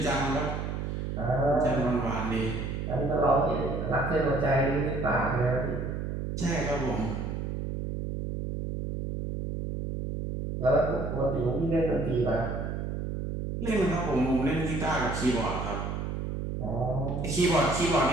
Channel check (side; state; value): right; noise; hum, 3 dB below the sound